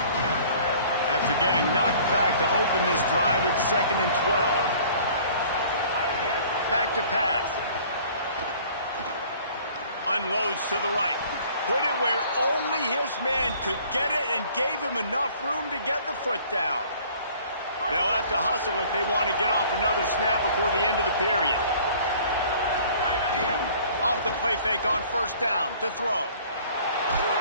After getting knocked back to open this drive, it's 2nd and 12. Back to pass. Unloads to the right. Put it where only his man could get it and gave him enough room to get the foot down. They'll have to hustle if they want to get off another snap before the end of the period. Off the play fake on first down to throw.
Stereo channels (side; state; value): both; inverted; correlation -0.52